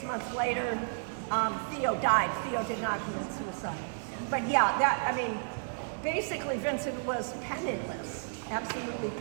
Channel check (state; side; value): silent; left; digital silence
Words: months later, Theo died. Theo did not commit suicide. But yeah, basically Vincent was penniless, absolutely